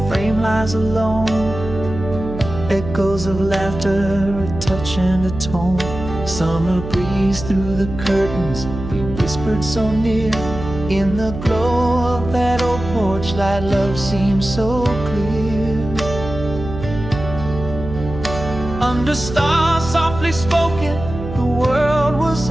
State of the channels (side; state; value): right; noise; hum, 9 dB below the sound